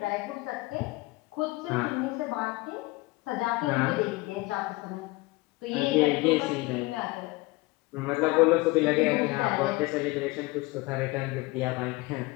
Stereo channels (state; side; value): quieter; right; 22.4 dB